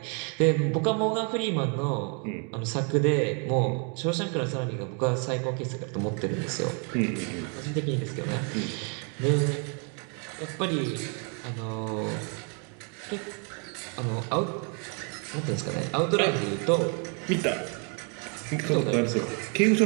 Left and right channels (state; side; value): quieter; left; 38.5 dB